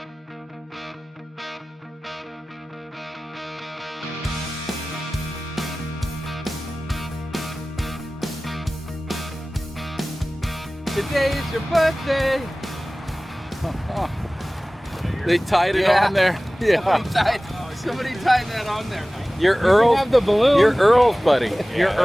Today is your birthday. They tied it on there. Yeah. Somebody tied that on there. You're Earl. Have the balloon. You're Earl's buddy. You're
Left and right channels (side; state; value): both; normal; correlation 0.98